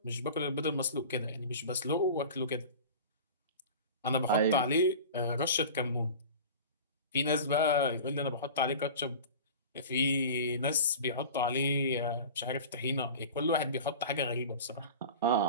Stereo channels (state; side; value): inverted; both; correlation -0.36